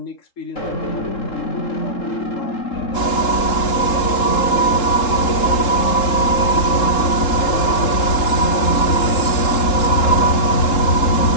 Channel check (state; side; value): late; right; 3.7 ms